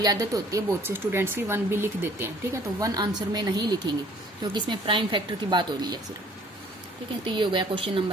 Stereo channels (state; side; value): normal; both; correlation 0.55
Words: आदत होती है, बहुत से स्टूडेंट्स की 1 भी लिख देते हैं, ठीक है। तो 1 आंसर में नहीं लिखेंगे क्योंकि इसमें प्राइम फैक्टर की बात हो रही है सिर्फ, ठीक है। तो ये हो गया question